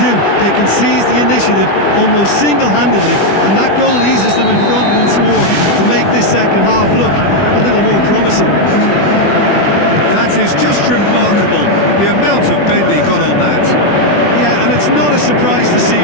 They can seize the initiative almost single-handedly, and that goal eases them in front once more to make this second half look a little more promising. That is just remarkable, the amount of bend he got on that. Yeah, and it's not a surprise to see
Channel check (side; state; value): right; late; 20 ms